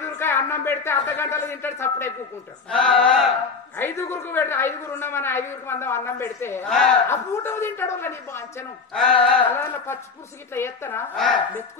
అన్నం పెడితే అర్ధ గంటలు తింటాడు చప్పుడే కూకుంటాడు 5 పెడితే 5 ఉన్నామని 5 మందం అన్నం పెడితే ఆ పూట తింటాడు నీ బాంచను అలా పచ్చి పురుషుకి ఇట్లా ఎత్తనా మెతుకు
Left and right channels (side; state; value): right; quieter; 4.9 dB